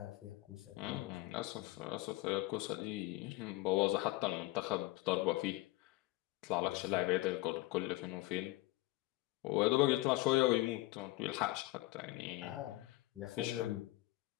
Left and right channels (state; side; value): quieter; right; 19.5 dB